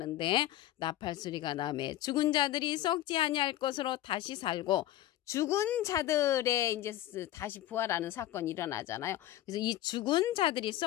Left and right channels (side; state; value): right; quieter; 13.8 dB